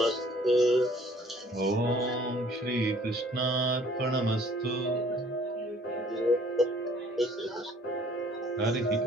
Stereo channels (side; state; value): both; normal; correlation 0.57